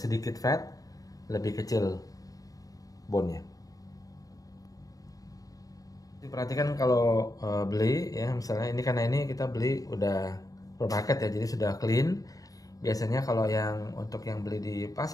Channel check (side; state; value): right; late; 0.17 ms